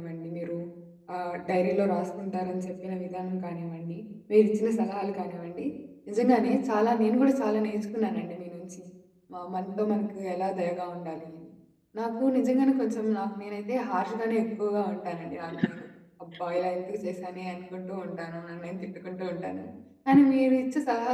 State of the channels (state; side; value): identical; both; correlation 1.00